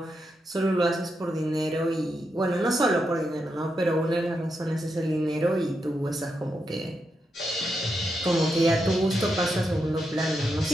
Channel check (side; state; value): both; normal; correlation 0.84